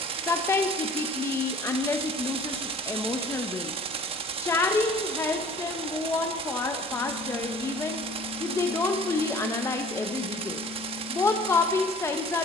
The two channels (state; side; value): normal; both; correlation 0.48